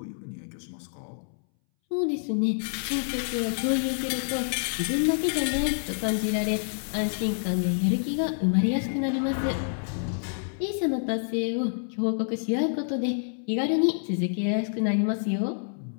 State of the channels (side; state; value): right; silent; 60 dB below the other